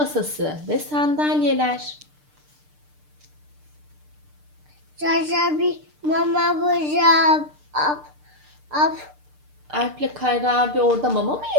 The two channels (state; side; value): late; left; 6.7 ms